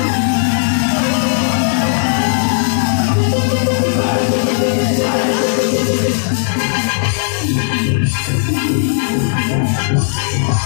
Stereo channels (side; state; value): right; silent; digital silence